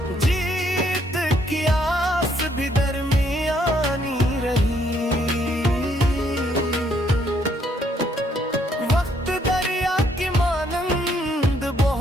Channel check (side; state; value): both; normal; correlation 0.69